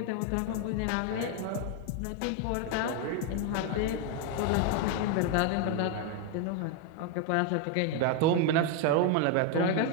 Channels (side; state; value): both; different; correlation 0.01